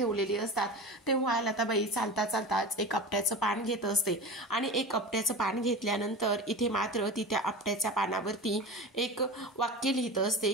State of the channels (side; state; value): both; normal; correlation 0.30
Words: असतात. तेव्हा लताबाई चालता चालताच एक आपट्याचं पान घेत असते आणि एक आपट्याचं पान घेतल्यानंतर इथे मात्र ती त्या आपट्याच्या पानावरती एक वाक्य लिहित असते